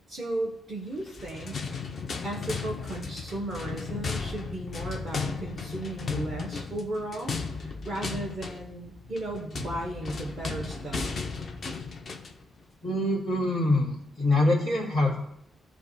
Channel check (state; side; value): normal; both; correlation 0.78